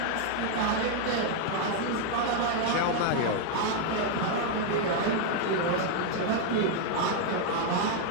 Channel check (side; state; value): both; different; correlation 0.00